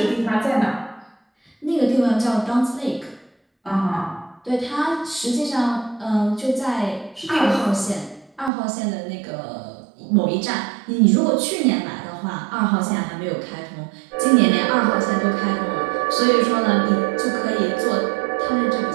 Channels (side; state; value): left; drops out; at 8.5 s